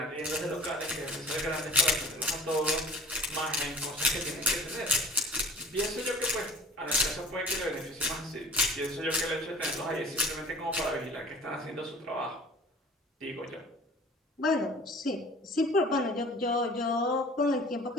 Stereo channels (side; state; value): both; normal; correlation 0.45